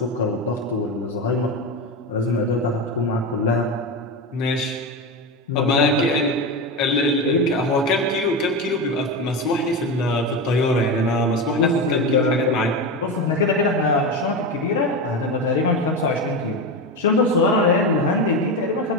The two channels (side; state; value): both; normal; correlation 0.18